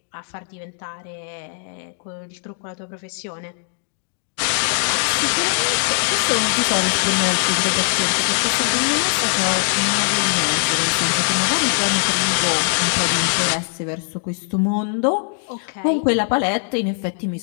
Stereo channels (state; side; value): silent; right; 65 dB below the other